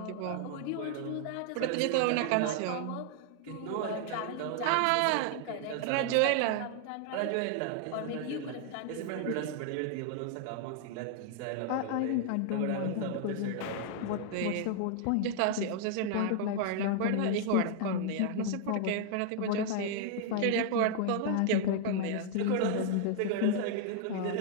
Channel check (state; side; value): different; both; correlation 0.00